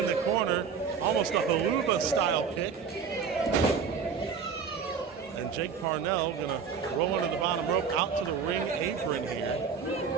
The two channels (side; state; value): left; quieter; 6.2 dB